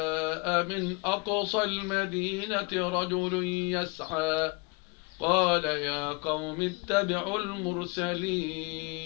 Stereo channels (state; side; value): quieter; right; 29.4 dB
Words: من أقصى المدينة رجل يسعى قال يا قوم اتبعوا المرسلين